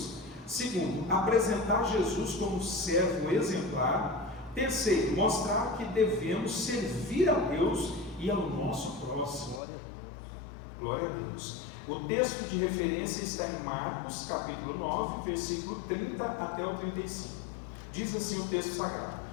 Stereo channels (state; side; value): drops out; right; at 9.6 s